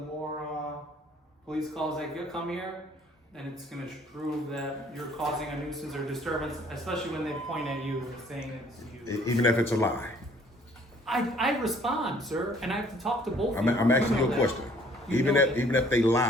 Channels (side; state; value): both; normal; correlation 0.58